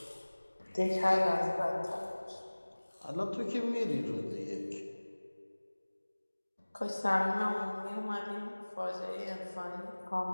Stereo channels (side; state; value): both; inverted; correlation -1.00